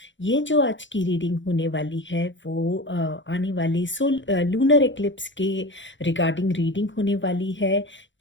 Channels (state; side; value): late; right; 0.54 ms